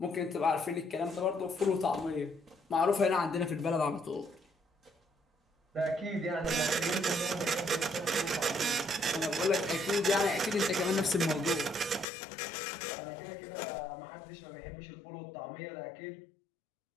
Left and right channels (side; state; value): right; drops out; at 12.1 s